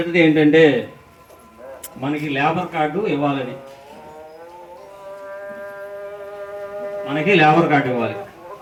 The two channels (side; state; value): both; identical; correlation 1.00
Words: ఏంటంటే మనకి లేబర్ కార్డు ఇవ్వాలని. మనకి లేబర్ కార్డు ఇవ్వాలి.